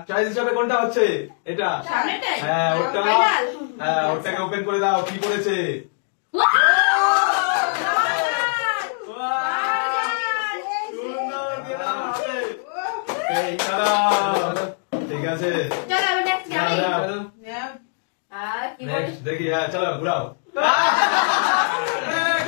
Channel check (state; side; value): silent; right; digital silence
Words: চয়েস হিসাবে কোনটা হচ্ছে? এটা সামনেটাই? হ্যাঁ ওটা। ফাইনাল। হ্যাঁ ওটাকে ওপেন করে দাও, কি পড়েছে? ঠিক আছে, দেখি। হ্যাঁ চলো ঘুরাও।